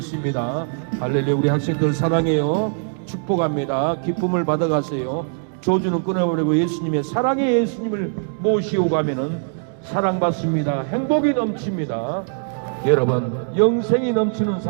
할렐루야. 우리 학생들 사랑해요. 축복합니다. 기쁨을 받아가세요. 조주는 끊어버리고 예수님의 사랑의 예수님을 모시고 가면은 사랑받습니다. 행복이 넘칩니다. 여러분, 영생이 넘치는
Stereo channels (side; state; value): left; silent; digital silence